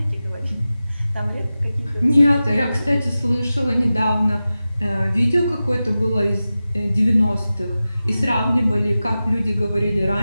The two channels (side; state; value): both; inverted; correlation -0.95